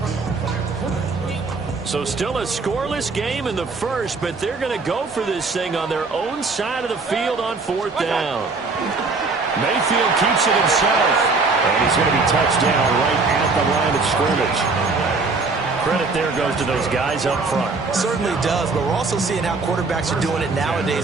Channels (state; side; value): quieter; left; 4.0 dB